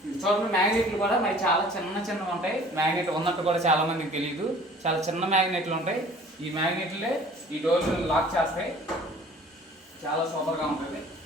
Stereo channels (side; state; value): both; normal; correlation 0.49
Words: చూడండి మ్యాగ్నెట్లు కూడా మరి చాలా చిన్నవి ఉంటాయి. మ్యాగ్నెట్ ఉన్నట్టు కూడా చాలా మందికి తెలియదు, చాలా చిన్న మ్యాగ్నెట్లు ఉంటాయి. ఈ మ్యాగ్నెట్లే ఈ డోర్లు లాక్ చేస్తాయి. చాలా సూపర్గా ఉంటుంది.